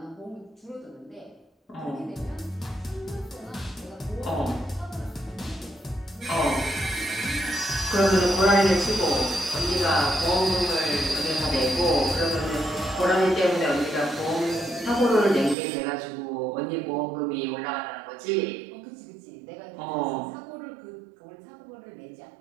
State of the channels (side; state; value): left; drops out; at 15.6 s